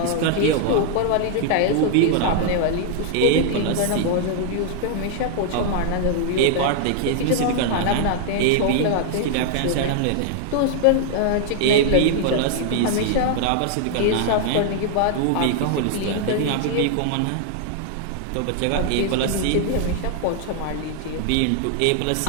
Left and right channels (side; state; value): both; different; correlation 0.00